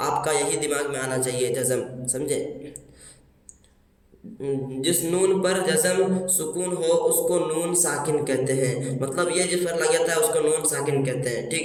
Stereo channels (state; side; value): identical; both; correlation 1.00